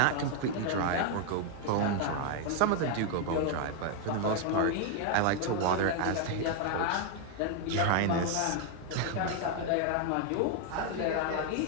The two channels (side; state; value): both; different; correlation 0.00